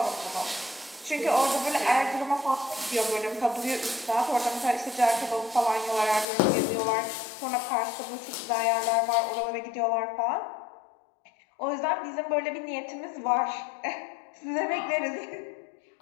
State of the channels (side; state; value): right; drops out; at 6.2 s